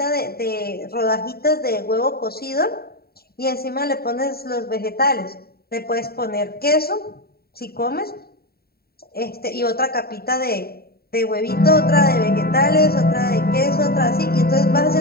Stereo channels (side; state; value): right; late; 0.45 ms